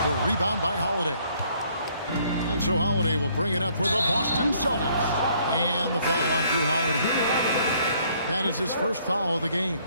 The rebound by Holiday. And so Holiday will bring it up for the Boston Celtics. And the foul on Drew Holiday. That is his first foul of the game.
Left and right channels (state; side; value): inverted; both; correlation -0.64